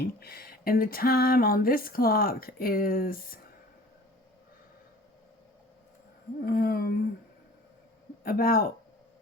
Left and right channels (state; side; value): normal; both; correlation 0.46